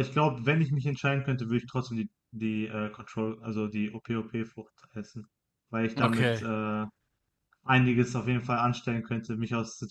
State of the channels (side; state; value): both; identical; correlation 1.00